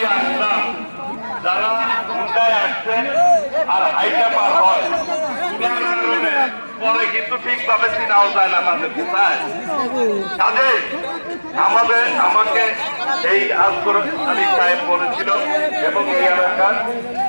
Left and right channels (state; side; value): inverted; both; correlation -1.00